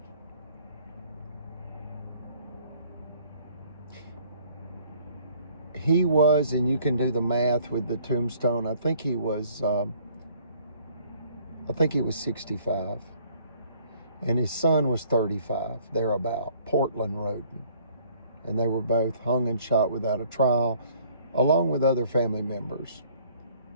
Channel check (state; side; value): inverted; both; correlation -0.60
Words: He was, and you can do the math with the tombstone, I think he was 65. And his son was 35, thereabout, Portland Roden. And they were both hung and shot without a trial, along with other family members.